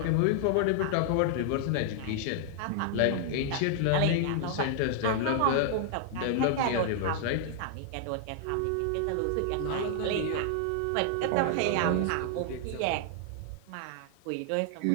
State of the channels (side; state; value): both; different; correlation 0.00